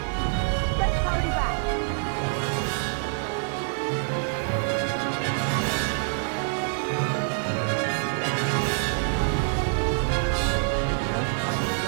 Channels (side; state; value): left; silent; 59 dB below the other